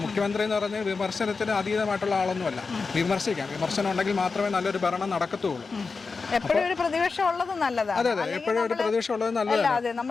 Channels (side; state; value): right; quieter; 4.5 dB